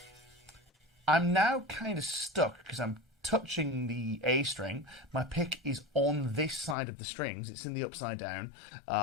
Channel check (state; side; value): drops out; right; at 6.8 s